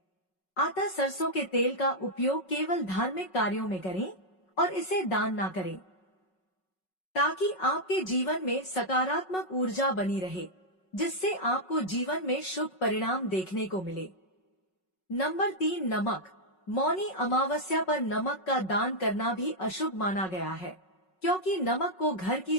अतः सरसों के तेल का उपयोग केवल धार्मिक कार्यों में करें और इसे दान ना करें, ताकि आपके जीवन में सकारात्मक ऊर्जा बनी रहे, जिससे आपको जीवन में शुभ परिणाम देखने को मिले। नंबर 3, नमक। मौनी अमावस्या पर नमक का दान करना भी अशुभ माना गया है, क्योंकि नमक को घर की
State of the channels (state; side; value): late; right; 5.4 ms